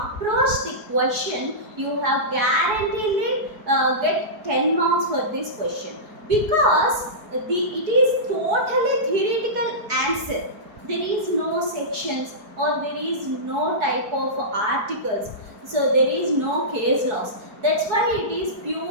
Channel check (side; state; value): left; late; 4.7 ms